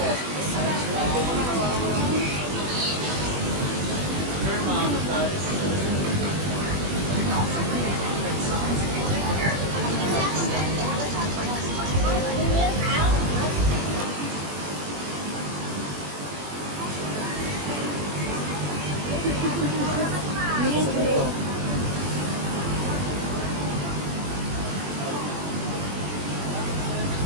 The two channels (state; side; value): late; left; 21 ms